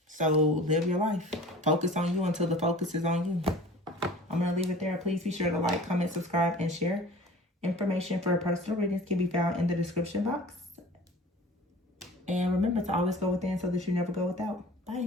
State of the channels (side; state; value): both; normal; correlation 0.42